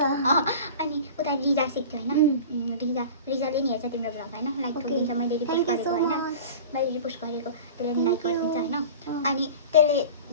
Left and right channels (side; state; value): both; inverted; correlation -0.37